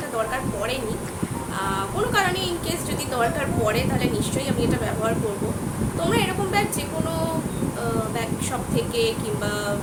দরকার পড়েনি। কোনো কারণে ইনকেস যদি দরকার পড়ে তাহলে নিশ্চয়ই আমি এটা ব্যবহার করব। তোমরা এরকম ব্যাগ যে কোনো ব্যাগ শপ থেকে কিংবা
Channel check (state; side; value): identical; both; correlation 1.00